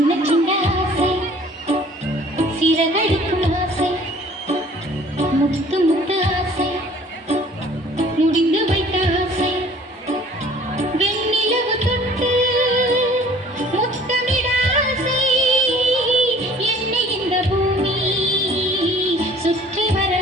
சின்ன ஆசை சிறகடிக்கும் ஆசை முத்து முத்து ஆசை முடிந்து வைத்த ஆசை வெண்ணிலவு தொட்டு முத்தமிட ஆசை என்னை இந்த பூமி சுற்றி வர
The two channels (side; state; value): both; normal; correlation 0.52